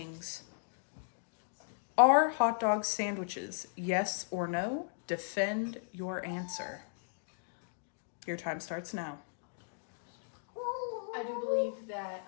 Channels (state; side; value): silent; right; digital silence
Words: Are hot dog sandwiches? Yes or no? Defend your answer. Your time starts now. I do believe that